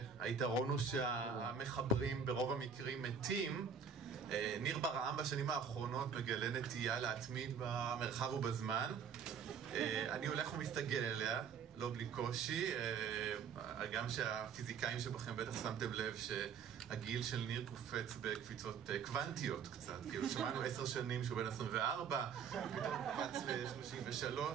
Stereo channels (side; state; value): left; quieter; 6.6 dB